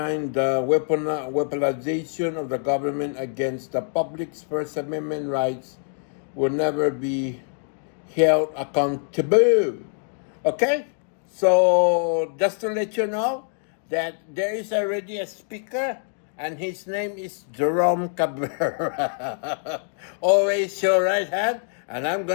the weaponization of the government against the public's First Amendment rights will never be held accountable. Okay? So, just to let you know that there is already a speaker, and his name is Jerome Cabrera. Always your right hand, and I'm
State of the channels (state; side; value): silent; right; 62 dB below the other